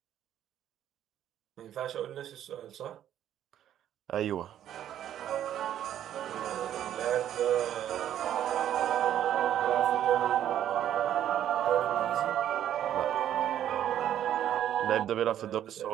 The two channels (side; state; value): left; quieter; 11.0 dB